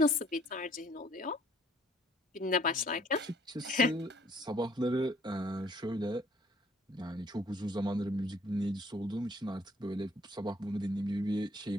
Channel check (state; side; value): normal; both; correlation 0.61